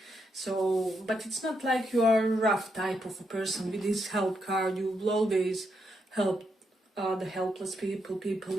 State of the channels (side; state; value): both; normal; correlation 0.80